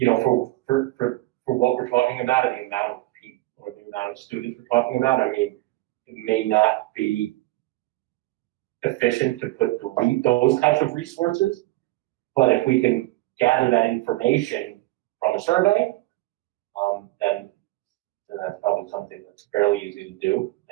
what we're talking about and the amount of people or the amount of students we're talking about, I mean, it may not be efficient to delete those types of resources. But if we can gather that information from a survey, then that's probably something that's fairly easy to do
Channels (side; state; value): left; quieter; 19.2 dB